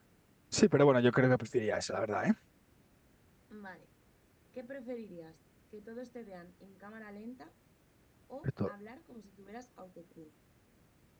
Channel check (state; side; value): identical; both; correlation 1.00